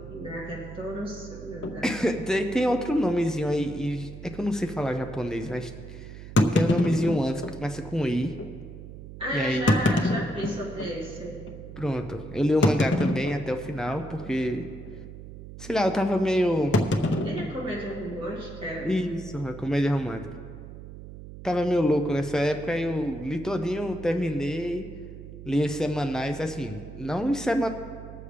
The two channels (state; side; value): noise; right; hum, 13 dB below the sound